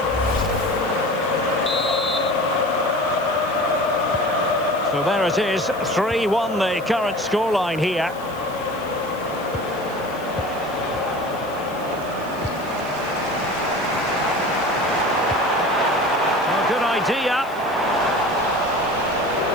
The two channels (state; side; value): noise; left; hiss, 23 dB below the sound